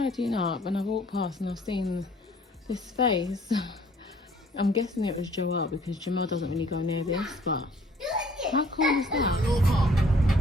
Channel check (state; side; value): normal; both; correlation 0.58